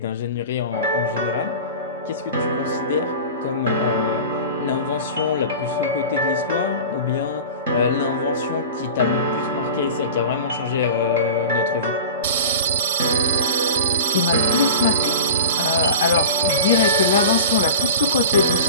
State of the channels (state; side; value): inverted; both; correlation -0.33